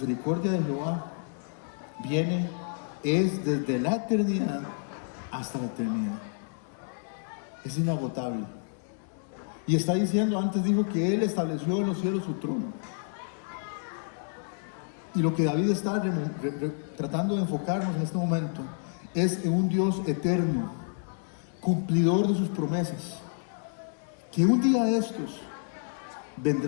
de Jehová es desde la eternidad hasta la eternidad. Es inagotable. Y está diciendo, antes dijo que Él estableció en los cielos su trono. Y lo que David está tratando de enfocarnos en este momento es en un Dios eterno, cumplidor de sus promesas, que un día de estos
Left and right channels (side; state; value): right; silent; 58 dB below the other